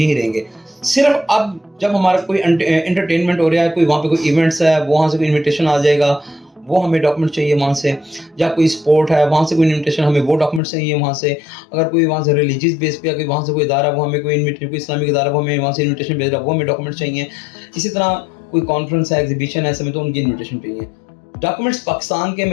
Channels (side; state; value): right; drops out; at 10.6 s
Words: रहेंगे। सिर्फ अब जब हमारा कोई एंटरटेनमेंट हो रहा है, कोई वहाँ पे कोई इवेंट्स है, वहाँ से कोई इन्विटेशन आ जाएगा, वो हमें डॉक्यूमेंट चाहिए वहाँ से, या कोई स्पोर्ट है वहाँ से कोई इन्विटेशन, हमें वो डॉक्यूमेंट चाहिए वहाँ से। अगर कोई वहाँ से रिलीजियस बेस पे या कोई वहाँ से कोई इदारा, वो हमें कोई इन्विटेशन, कोई इस्लामिक इदारा, वो हमें वहाँ से इन्विटेशन भेज रहा है, वो हमें डॉक्यूमेंट चाहिए। इसी तरह कोई कॉन्फ्रेंस है, एग्जीबिशन है, ऐसे में तो उनकी इन्विटेशन चाहिए। डॉक्यूमेंट्स पाकिस्तान के